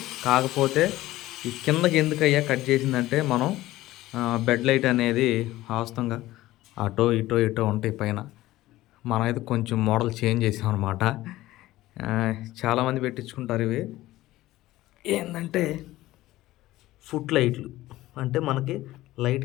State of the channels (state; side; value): quieter; right; 16.5 dB